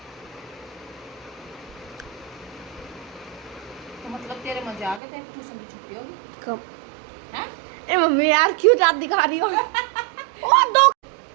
तो मतलब तेरे मजे आ गए, तेरे ट्यूशन की छुट्टी होगी कब? हैं? ए मम्मी यार क्यों रात दिखा रही हो? ओ दो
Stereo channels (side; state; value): left; drops out; at 5.0 s